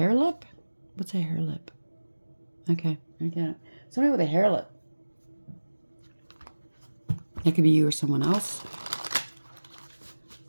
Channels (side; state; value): both; inverted; correlation -1.00